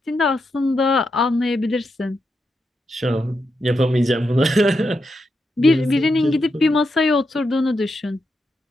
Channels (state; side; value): normal; both; correlation 0.84